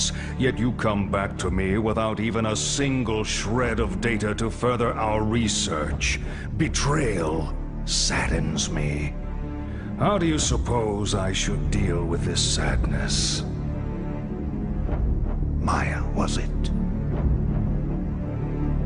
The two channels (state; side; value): identical; both; correlation 1.00